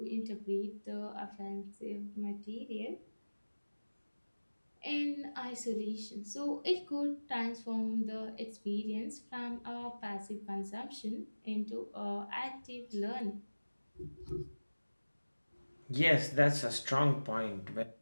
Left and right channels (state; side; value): inverted; both; correlation -1.00